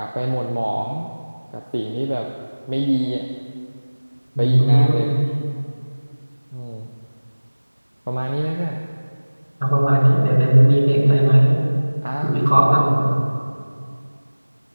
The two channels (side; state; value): both; inverted; correlation -1.00